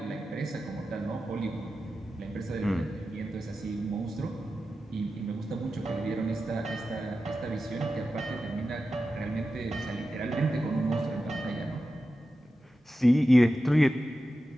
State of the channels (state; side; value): normal; both; correlation 0.92